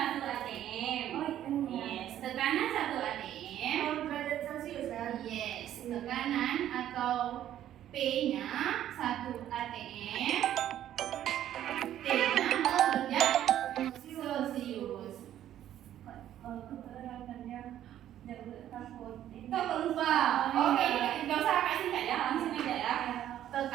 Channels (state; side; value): quieter; left; 11.6 dB